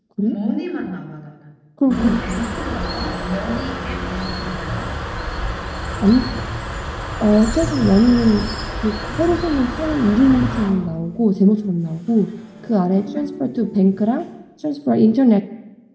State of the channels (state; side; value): identical; both; correlation 1.00